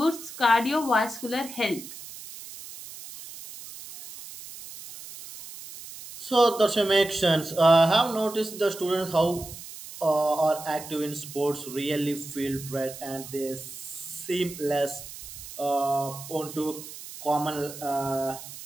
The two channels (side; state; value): right; noise; hiss, 13 dB below the sound